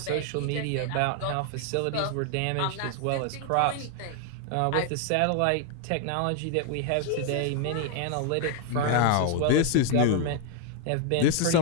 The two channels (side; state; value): both; different; correlation 0.00